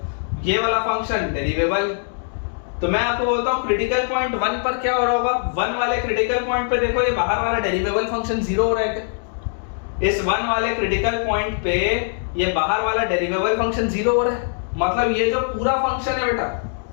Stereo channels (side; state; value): right; silent; digital silence